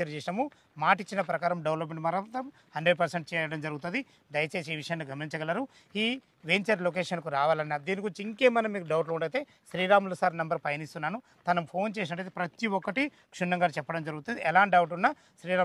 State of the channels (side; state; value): both; identical; correlation 1.00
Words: చేసినాము, మాట ఇచ్చిన ప్రకారం డెవలప్మెంట్ మాత్రం 100% చేయడం జరుగుతుంది. దయచేసి ఈ విషయాన్ని గమనించగలరు. ఈ వెంచర్ లొకేషన్కు రావాలన్న దీని గురించి ఇంకేమైనా మీకు డౌట్లు ఉండైతే శ్రీరాములు సార్ నెంబర్ పైన ఇస్తున్నాను, తను ఫోన్ చేసినట్టయితే ప్రతి ఒక్కటి క్షుణ్ణంగా చెప్పడం జరుగుతుంది. ఎలాంటి డౌట్ ఉన్నా